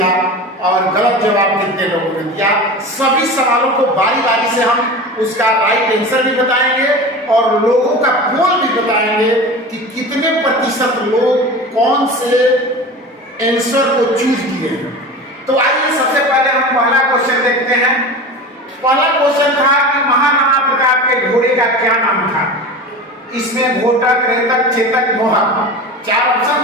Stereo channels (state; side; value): normal; both; correlation 0.32